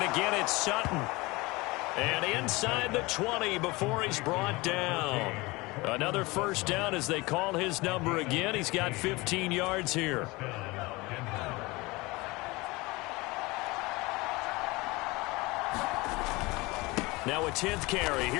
again it's Sutton. And inside the 20 before he's brought down. Another first down as they call his number again. He's got 15 yards here. Now a 10th carry.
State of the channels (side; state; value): right; quieter; 23.2 dB